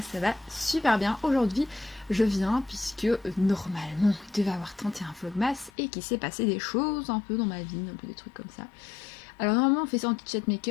ça va super bien. Aujourd'hui, je viens puisque normalement il devait avoir 31 vlogmas et qu'il s'est passé des choses un peu dans ma vie, un peu des trucs comme ça. Alors normalement on fait ça en chat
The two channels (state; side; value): drops out; right; at 5.7 s